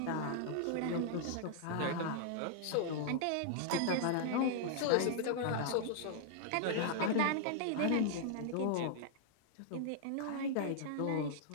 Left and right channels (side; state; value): both; different; correlation -0.01